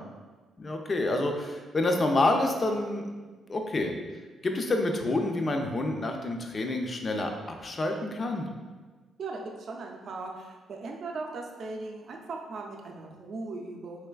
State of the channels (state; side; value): normal; both; correlation 0.82